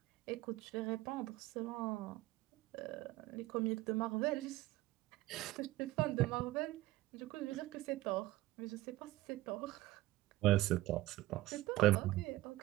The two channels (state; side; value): quieter; left; 17.4 dB